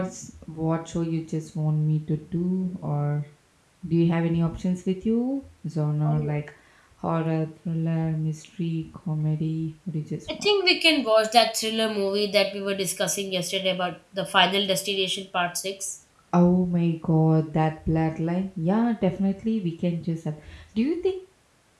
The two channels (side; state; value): both; identical; correlation 1.00